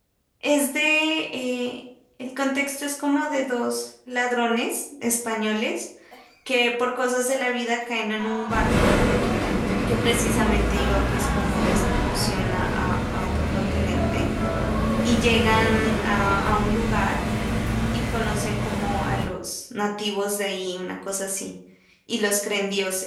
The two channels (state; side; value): identical; both; correlation 1.00